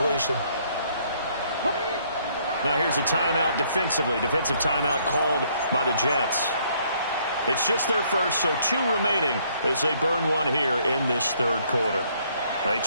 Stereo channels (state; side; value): inverted; both; correlation -0.66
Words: Now here's a timeout defensively. Defensive timeout called by the Jets. It's just their first, so 2 remaining as they burn one here in this 3rd quarter. They